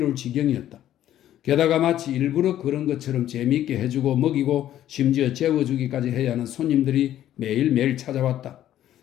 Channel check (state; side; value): quieter; right; 12.1 dB